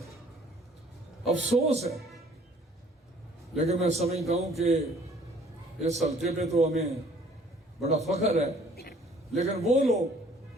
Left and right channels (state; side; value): normal; both; correlation 0.57